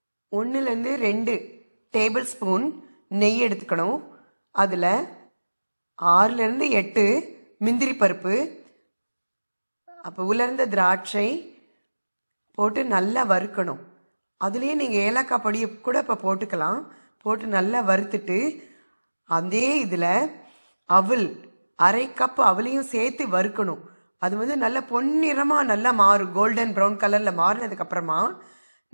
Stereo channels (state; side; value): inverted; both; correlation -1.00